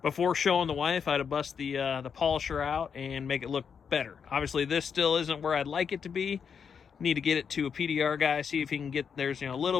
before showing the wife, I had to bust the polisher out and make it look better. Obviously, this still isn't where I'd like it to be. Need to get it to a PDR guy, see if he can get, there's a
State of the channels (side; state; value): right; quieter; 6.8 dB